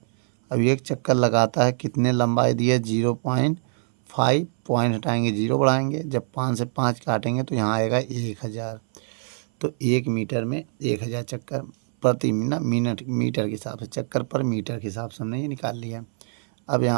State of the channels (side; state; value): left; silent; 61 dB below the other